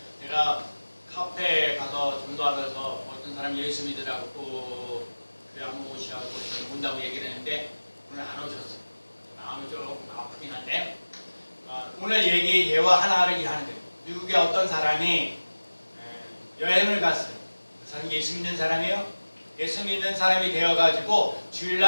제가 카페에 가서 전도하면서 어떤 사람이 예수 믿으라고 그래 한번 오시라고 온다고 얘기를 했는데 오늘 안 오셨어요. 마음이 조금 아프긴 한데 오늘 예와 하나를 이해하는 거예요. 미국에 어떤 사람이 여행을 갔어요. 그 사람이 예수 믿는 사람이에요. 예수 믿는 사람이 되어가지고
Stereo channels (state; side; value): inverted; both; correlation -1.00